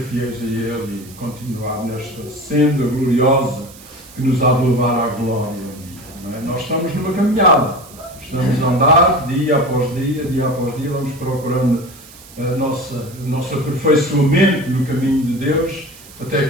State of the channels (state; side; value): noise; right; hiss, 20 dB below the sound